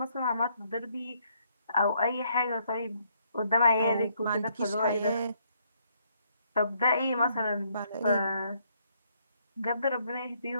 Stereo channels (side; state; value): both; inverted; correlation -0.70